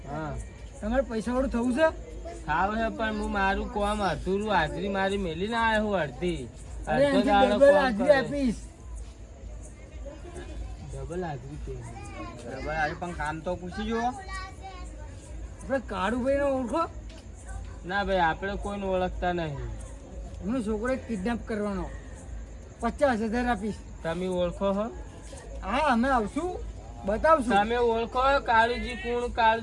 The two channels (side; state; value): both; identical; correlation 1.00